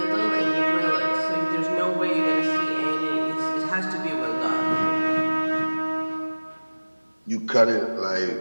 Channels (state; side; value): inverted; both; correlation -1.00